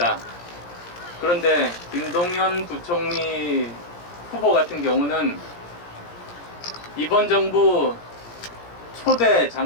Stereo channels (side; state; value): right; late; 17 ms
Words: 그런데 김동연 부총리 후보 같은 경우는 이번 정부 초대